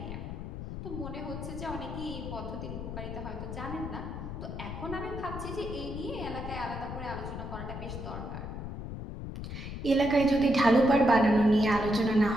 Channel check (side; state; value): left; noise; rumble, 7 dB below the sound